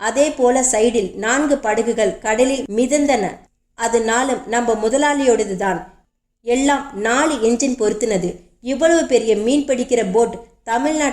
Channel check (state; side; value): identical; both; correlation 1.00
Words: அதே போல சைடில் 4 படகுகள் கடலில் மிதந்தன. அது 4ம் நம்ம முதலாளியோடது தான். எல்லாம் 4 என்ஜின் பொருத்தினது. இவ்வளவு பெரிய மீன் பிடிக்கிற போட்